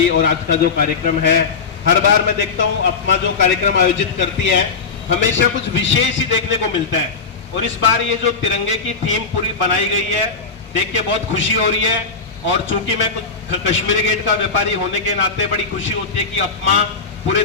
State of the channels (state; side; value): quieter; right; 4.9 dB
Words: और आज का जो कार्यक्रम है, हर बार मैं देखता हूं अपमा जो कार्यक्रम आयोजित करती है हमेशा कुछ विशेष ही देखने को मिलता है। और इस बार ये जो तिरंगे की थीम पूरी बनाई गई है देख के बहुत खुशी हो रही है। और चूंकि मैं कुछ कश्मीरी गेट का व्यापारी होने के नाते बड़ी खुशी होती है कि अपमा पूरे